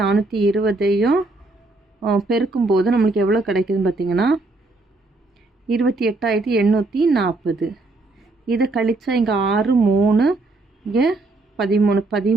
பெருக்கும்போது நம்மளுக்கு எவ்வளோ கிடைக்குதுன்னு பார்த்தீங்கன்னா 28,840. இதை கழிச்சா இங்கே 6 3 இங்கே 13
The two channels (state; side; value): quieter; left; 3.2 dB